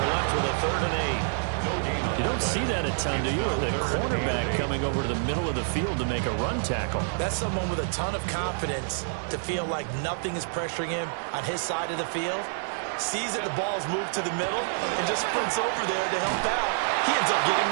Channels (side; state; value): left; silent; 60 dB below the other